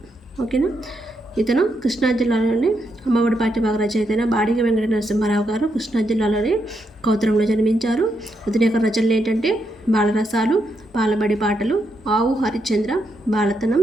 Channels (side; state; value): both; normal; correlation 0.80